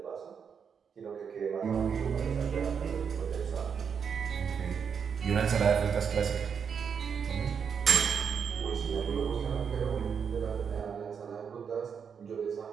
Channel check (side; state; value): left; quieter; 6.8 dB